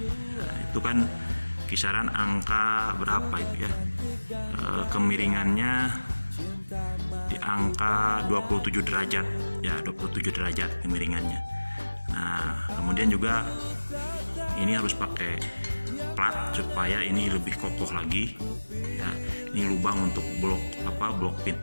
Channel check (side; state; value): both; inverted; correlation -1.00